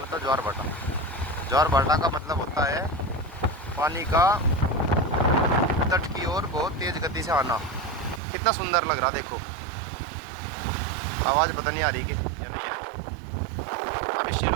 ज्वार भाटा। ज्वार भाटा का मतलब होता है पानी का तट की ओर बहुत तेज गति से आना। कितना सुंदर लग रहा, देखो। आवाज़ पता नहीं आ रही कि नहीं आ रही। अभी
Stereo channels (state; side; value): drops out; left; at 8.2 s